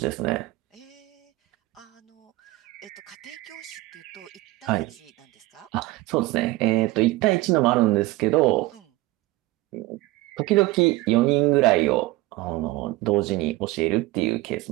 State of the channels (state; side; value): quieter; left; 18.8 dB